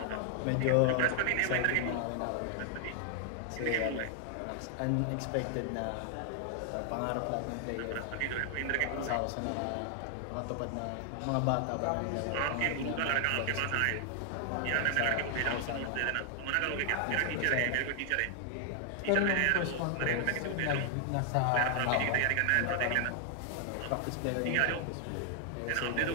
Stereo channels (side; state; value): both; different; correlation 0.00